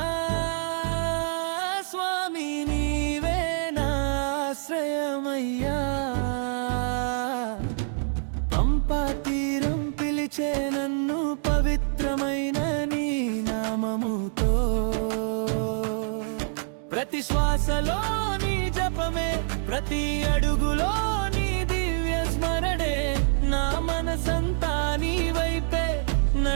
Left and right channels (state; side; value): silent; left; digital silence